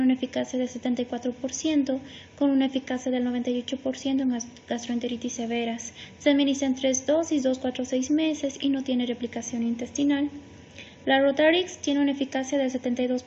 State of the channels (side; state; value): both; identical; correlation 1.00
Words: una eficacia del 74% con una eficacia del 98% en gastroenteritis severas. Se administra en 3 dosis, 2, 4, 6 meses y no tiene replicación intestinal. La Rotarix tiene una eficacia del